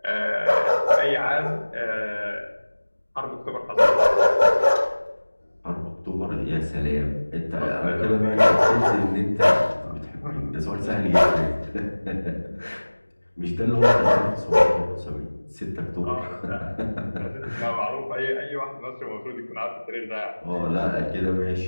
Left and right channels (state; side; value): inverted; both; correlation -1.00